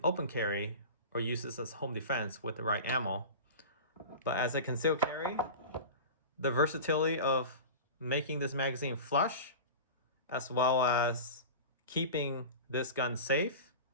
open carry or use this as home defense with the right ammo, but as a concealed carry, the versatility of making this magazine flush as well as keeping this gun safe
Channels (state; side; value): inverted; both; correlation -0.31